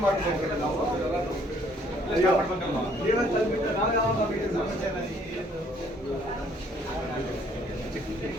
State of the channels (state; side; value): normal; both; correlation 0.63